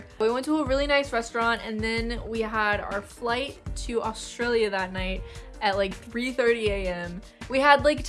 We went to a really nice restaurant and then we had our flight to Australia that night at like 3:30 a.m. We had like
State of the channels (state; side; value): identical; both; correlation 1.00